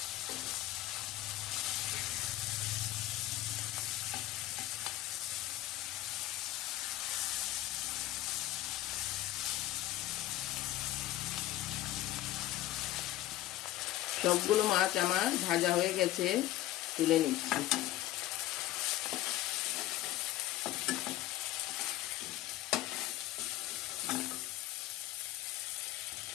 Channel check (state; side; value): quieter; right; 14.9 dB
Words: সবগুলো মাছ আমার ভাজা হয়ে গেছে, তুলে নিচ্ছি।